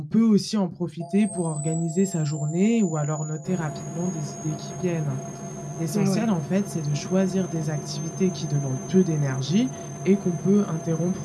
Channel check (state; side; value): identical; both; correlation 1.00